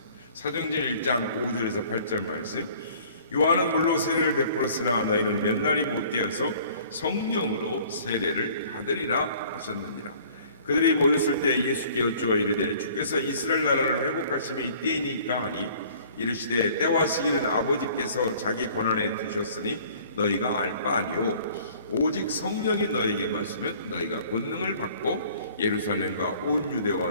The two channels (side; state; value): both; inverted; correlation -0.53